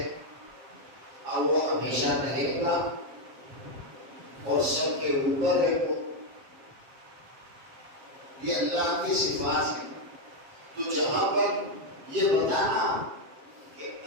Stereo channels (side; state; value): left; late; 7.5 ms